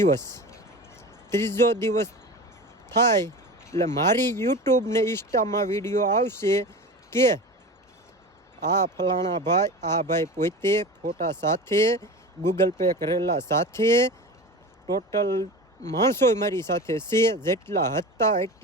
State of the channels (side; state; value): both; normal; correlation 0.31